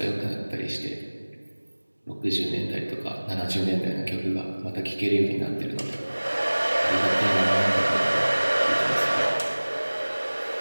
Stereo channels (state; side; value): inverted; both; correlation -1.00